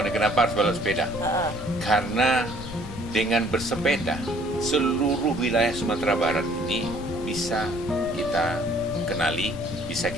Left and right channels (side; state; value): left; noise; rumble, 11 dB below the sound